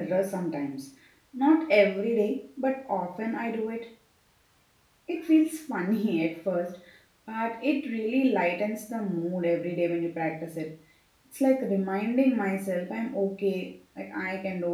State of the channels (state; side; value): identical; both; correlation 1.00